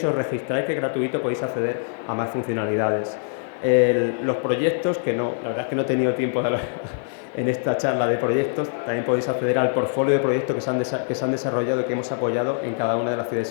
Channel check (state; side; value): silent; right; digital silence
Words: y os registráis, que es gratuito, podéis acceder a más funcionalidades. Los proyectos, la verdad es que no he tenido tiempo de hablar en esta charla de proyectos, también podéis acceder al portfolio de proyectos que se han desarrollado y que hemos apoyado en cada una de las ciudades